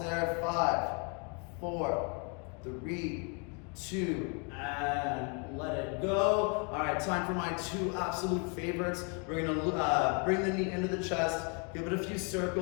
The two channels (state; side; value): quieter; right; 34.5 dB